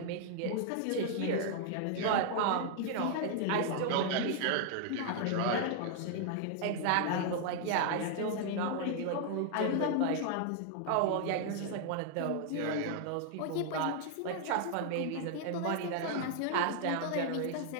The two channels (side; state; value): both; different; correlation 0.00